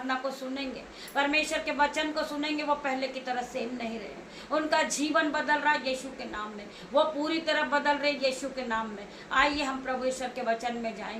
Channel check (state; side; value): identical; both; correlation 1.00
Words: को सुनेंगे परमेश्वर के वचन को सुनेंगे वो पहले की तरह सेम नहीं रहे। उनका जीवन बदल रहा है यीशु के नाम में, वो पूरी तरह बदल रहे यीशु के नाम में। आइए हम प्रभु ईश्वर के वचन में